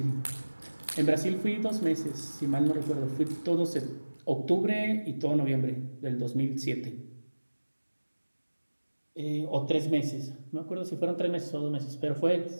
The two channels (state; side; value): inverted; both; correlation -1.00